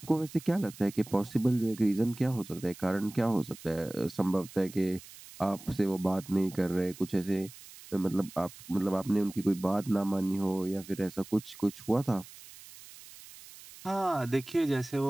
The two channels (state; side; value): noise; right; hiss, 18 dB below the sound